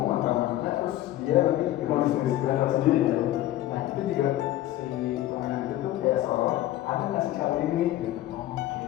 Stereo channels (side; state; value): right; quieter; 14.1 dB